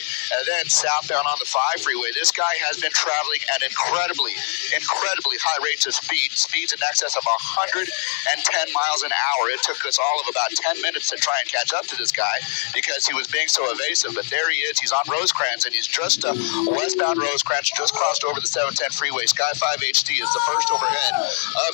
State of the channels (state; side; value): silent; right; digital silence